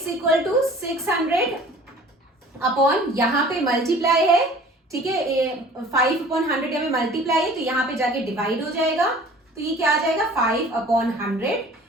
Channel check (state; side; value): normal; both; correlation 0.48